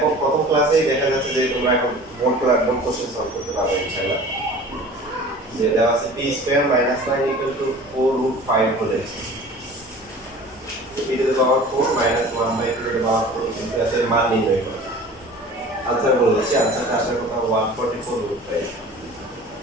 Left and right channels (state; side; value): normal; both; correlation 0.43